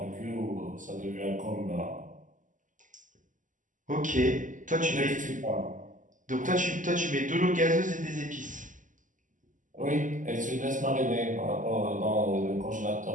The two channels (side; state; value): left; late; 0.37 ms